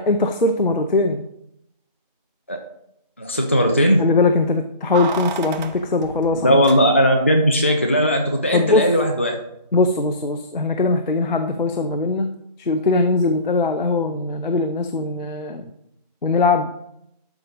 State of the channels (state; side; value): inverted; both; correlation -0.38